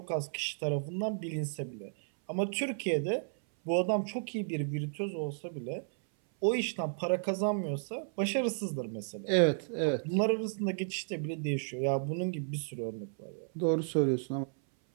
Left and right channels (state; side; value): silent; left; 56 dB below the other